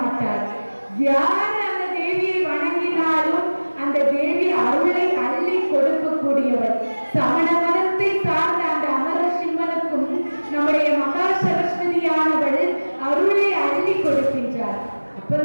யார் அந்த தேவியை வணங்கினாலும் அந்த தேவி அருளை அள்ளி கொடுக்கக்கூடியவர். சமண மதத்தை சார்ந்த அந்த அமரசிம்மனுக்கும் நம்முடைய மகா சரஸ்வதியானவள் அருளை அள்ளி கொடுக்கின்றார்.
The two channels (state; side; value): inverted; both; correlation -1.00